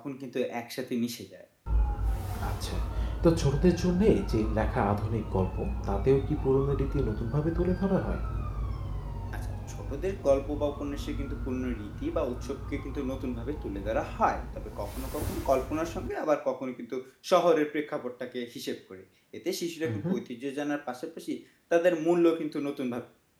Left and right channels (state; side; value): identical; both; correlation 1.00